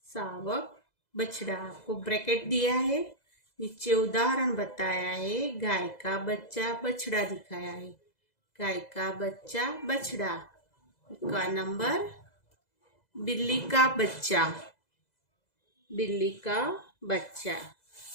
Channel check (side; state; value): right; late; 2.0 ms